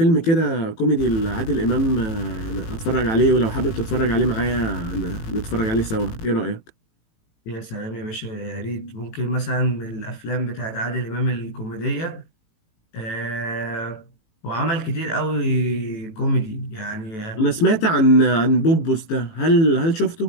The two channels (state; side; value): late; right; 18 ms